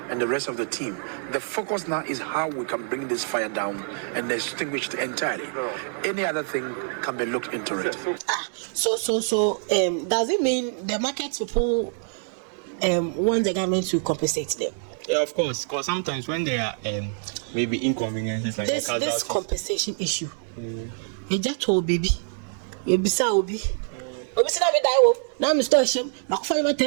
and the rest of the team. The focus now is how we can bring this fire down and extinguish it entirely. Any other thing can be looked into it. So does it mean the market people want the government to compensate them? Yeah, of course. Because sometimes when there are maybe inconveniences like this compensation issue, you just told baby, you be so obi. Obi say na me die wo. Now me store shame. Makufa you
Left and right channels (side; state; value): left; silent; 61 dB below the other